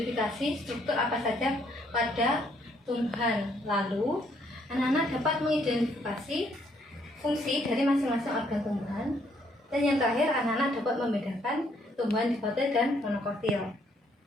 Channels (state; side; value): normal; both; correlation 0.69